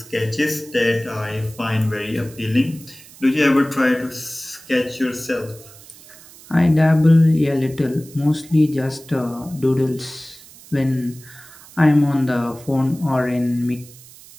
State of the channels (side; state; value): right; noise; hiss, 21 dB below the sound